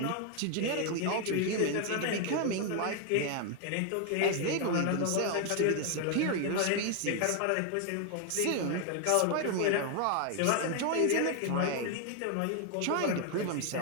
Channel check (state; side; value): different; both; correlation 0.01